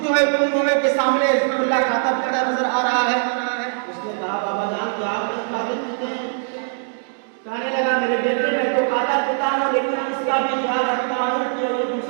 ہے کنویں کے سامنے اللہ کھاتا پیتا نظر آ رہا ہے۔ اس نے کہا بابا جان کیا آپ کھاتے پیتے ہیں؟ کہنے لگا میرے بیٹے میں تو کھاتا پیتا ہوں، لیکن اس کا بھی خیال رکھتا ہوں کہ وہ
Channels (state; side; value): silent; left; digital silence